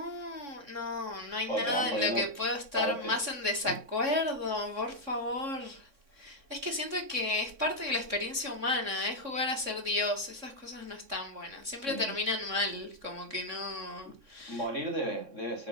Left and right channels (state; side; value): late; left; 3.6 ms